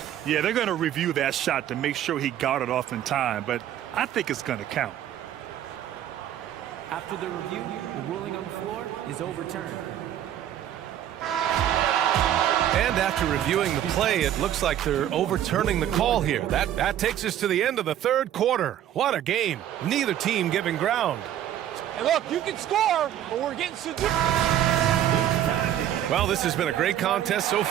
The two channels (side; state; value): left; quieter; 11.2 dB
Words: Yeah, they're going to review that shot to make sure he got it off in time, but I think it's going to count. After the review, the ruling on the floor is overturned. And after reviewing the play, it looks like they're overturning the call here. That takes us to the end of the third quarter. What a game. Neither team giving ground. Hey, look, you can score, but we're getting severe. Well, this has been a great contest so